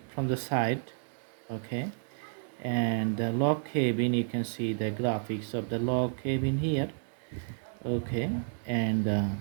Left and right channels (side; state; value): left; silent; digital silence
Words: from the side. Okay, and the log cabin, you can see the graphics of the log cabin here. Okay, and the